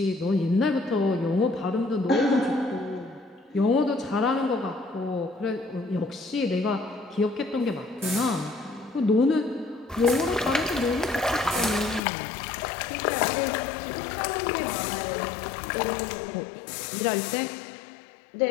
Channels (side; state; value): right; drops out; at 12.0 s